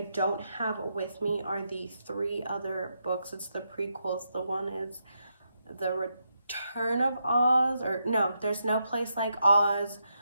don't have with me are the 3 other books. It's the prequels. The one is The Return of Oz, or no, There's No Place Like Oz.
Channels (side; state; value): both; inverted; correlation -0.83